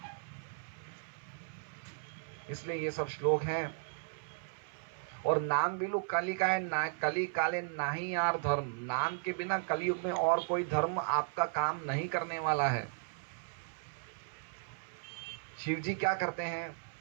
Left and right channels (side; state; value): left; silent; 54 dB below the other